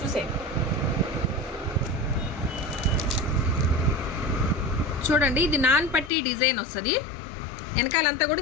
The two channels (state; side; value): drops out; right; at 6.1 s